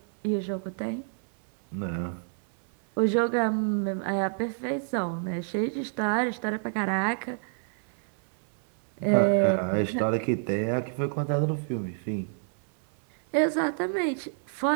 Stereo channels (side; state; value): left; silent; 59 dB below the other